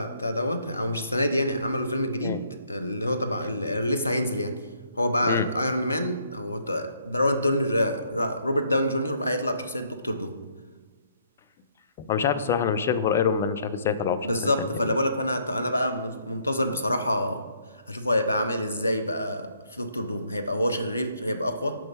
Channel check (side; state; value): both; inverted; correlation -0.66